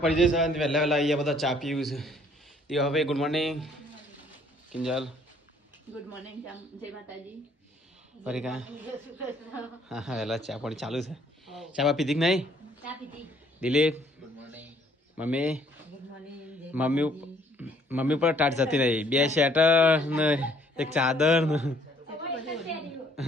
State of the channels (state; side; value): normal; both; correlation 0.62